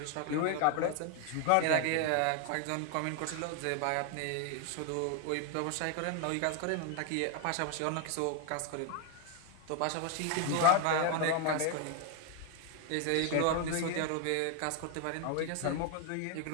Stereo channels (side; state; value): both; different; correlation 0.01